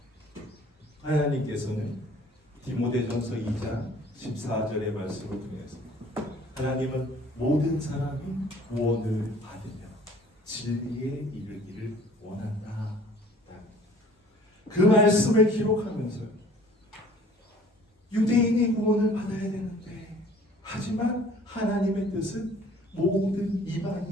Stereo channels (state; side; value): normal; both; correlation 0.52